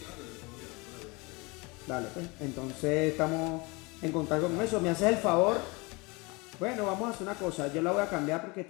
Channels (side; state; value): right; quieter; 26.6 dB